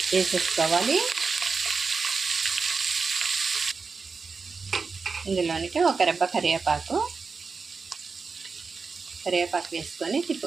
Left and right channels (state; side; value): quieter; left; 4.8 dB